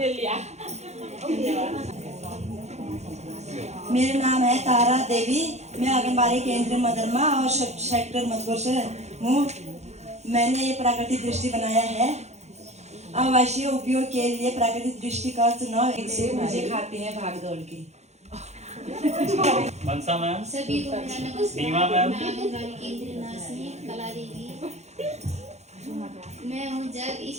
मेरा नाम है तारा देवी, मैं आंगनबाड़ी केंद्र मदरमा और सेक्टर मधुपुर से हूँ। मैंने ये प्राकृतिक दृष्टि बनाया है। आवासीय उपयोग के लिए प्राकृतिक दृष्टि का चुनाव से मुझे खाते हैं भाग दौड़ के। मनसा मैम, सभी को मेरा नमस्कार। नीमा मैम, मैं आंगनबाड़ी केंद्र नासनी कला देवी, मैं हूँ जग,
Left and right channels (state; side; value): late; left; 0.32 ms